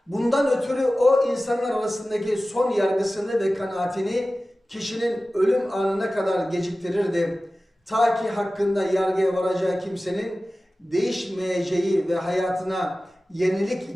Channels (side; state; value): both; normal; correlation 0.96